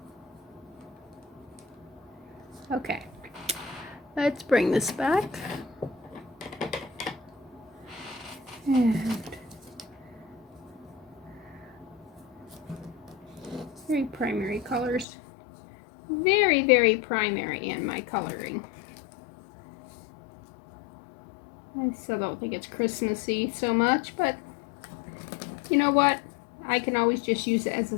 Okay. Let's bring this back. And... very primary colors. Very, very primary in my coloring. I still don't think it's Christmassy so much, but you know what? I can always just use it as a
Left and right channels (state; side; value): drops out; right; at 15.1 s